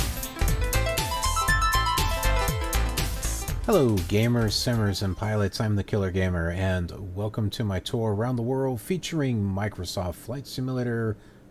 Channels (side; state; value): both; identical; correlation 1.00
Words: Hello gamers, simmers, and pilots, I'm the Killer Gamer, and welcome to my tour around the world featuring Microsoft Flight Simulator